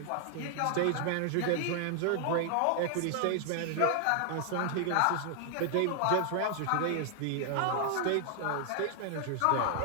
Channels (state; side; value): different; both; correlation 0.00